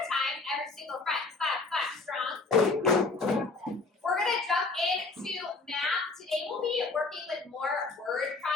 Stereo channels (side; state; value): right; quieter; 3.8 dB